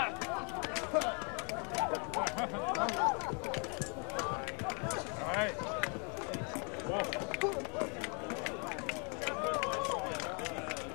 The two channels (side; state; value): right; quieter; 36.9 dB